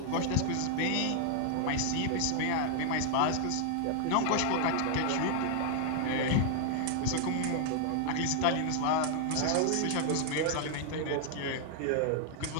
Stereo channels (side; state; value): both; different; correlation 0.00